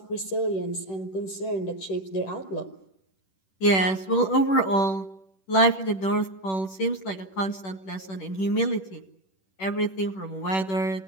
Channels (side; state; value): right; late; 10 ms